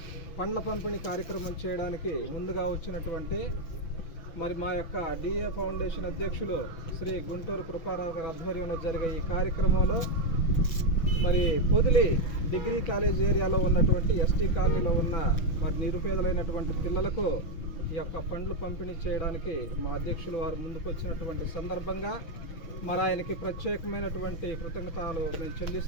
పండ్ల పంపిణీ కార్యక్రమం చేయడానికి ముందుగా వచ్చినటువంటి మా యొక్క డిఏ ఫౌండేషన్ అధ్యక్షులు శ్రీ గుంటూరు కృపారావు గారి ఆధ్వర్యంలో జరిగే ఈ కార్యక్రమంలో పొదిలి డిగ్రీ కాలేజ్ ఏరియాలో ఉన్నటువంటి ఎస్టీ కాలనీలో ఉన్న నిరుపేదలైనటువంటి పిల్లలకు ఈ యొక్క పండ్లు పంపిణీ చేయడానికి మా అధ్యక్షులు వారు ముందుకు వచ్చినటువంటి సందర్భంగా ఆయనకి ప్రత్యేకమైనటువంటి కృతజ్ఞతలు మేము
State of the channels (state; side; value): late; right; 6.0 ms